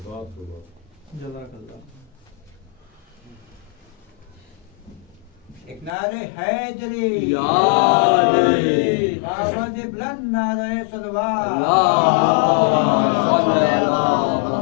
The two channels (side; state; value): right; drops out; at 5.9 s